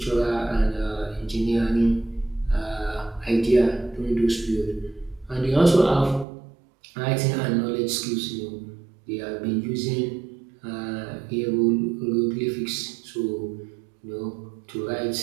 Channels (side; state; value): left; drops out; at 6.2 s